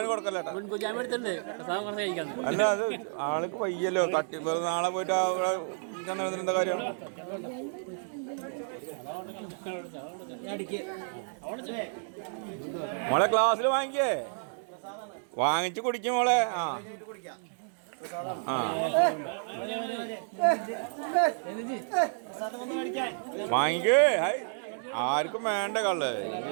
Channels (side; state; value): left; silent; digital silence